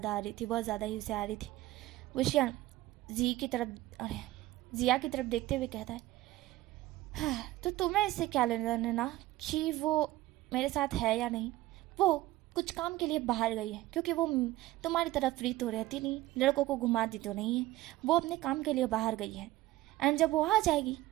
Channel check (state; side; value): quieter; left; 16.9 dB